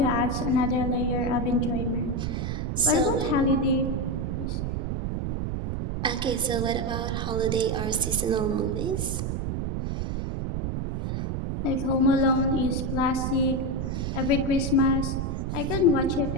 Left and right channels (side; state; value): right; noise; rumble, 2 dB below the sound